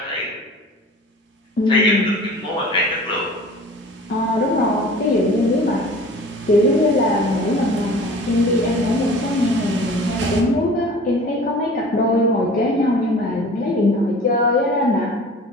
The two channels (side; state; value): both; normal; correlation 0.43